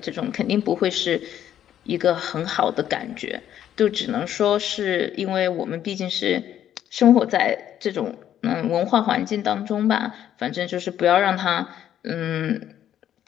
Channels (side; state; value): right; quieter; 10.7 dB